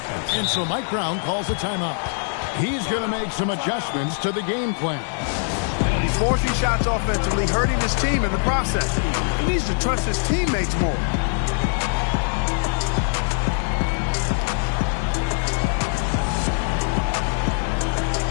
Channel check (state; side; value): silent; right; digital silence